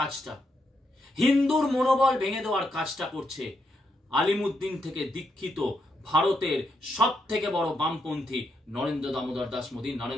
হিন্দুর মনোবল ভেঙে দেওয়ার কাজটা করছে আলিমুদ্দিন থেকে দীক্ষিত ভারতের সব থেকে বড় বামপন্থী নরেন্দ্র দামোদর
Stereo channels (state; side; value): normal; both; correlation 0.80